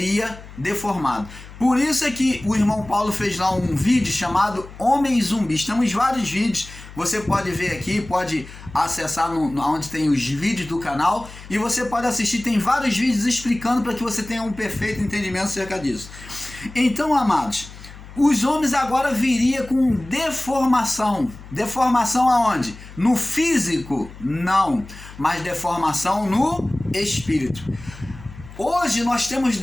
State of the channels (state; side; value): noise; left; hum, 17 dB below the sound